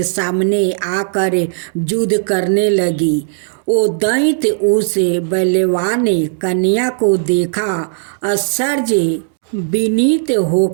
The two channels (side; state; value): left; silent; digital silence